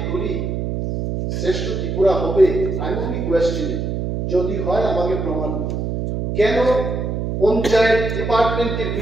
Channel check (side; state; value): right; noise; hum, 2 dB below the sound